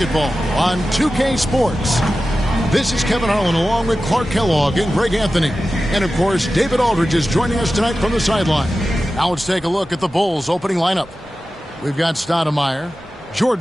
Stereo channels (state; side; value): normal; both; correlation 0.94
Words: on 2K Sports. This is Kevin Harlan along with Clark Kellogg and Greg Anthony. And, of course, David Aldridge is joining us tonight from the sideline. Now let's take a look at the Bulls' opening lineup. We've got Stoudemire.